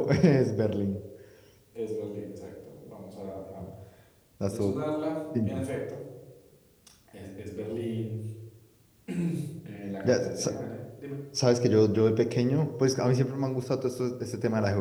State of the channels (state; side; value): identical; both; correlation 1.00